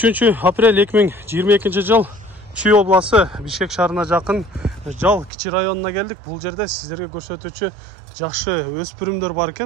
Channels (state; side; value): drops out; left; at 5.3 s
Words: aprel 2022 жыл Чүй обласы Бишкек шаарына жақын Жал кичи районуна келдик. Бул жерде сиздерге көрсөтүүчү жакшы өспүрүмдөр бар